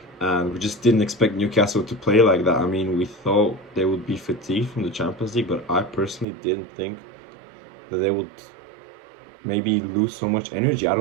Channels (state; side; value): drops out; left; at 6.2 s